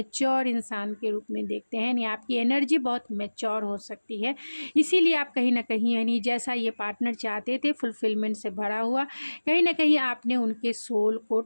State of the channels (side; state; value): both; inverted; correlation -1.00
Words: इंसान के रूप में देखते हैं, यानी आपकी एनर्जी बहुत मैच्योर हो सकती है। इसीलिए आप कहीं ना कहीं यानी जैसा ये पार्टनर चाहते थे, फुलफिलमेंट से भरा हुआ, कहीं ना कहीं आपने उनके सोल को